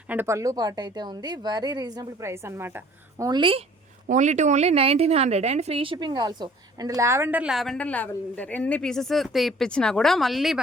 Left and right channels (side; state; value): both; normal; correlation 0.53